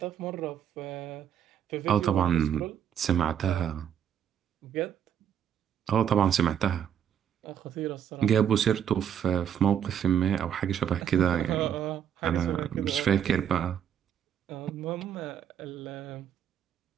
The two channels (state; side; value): quieter; left; 9.0 dB